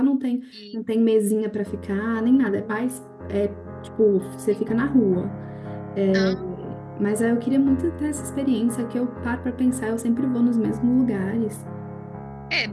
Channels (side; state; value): both; identical; correlation 1.00